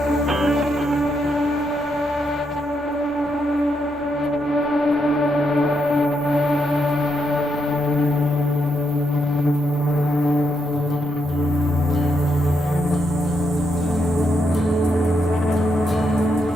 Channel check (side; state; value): both; normal; correlation 0.80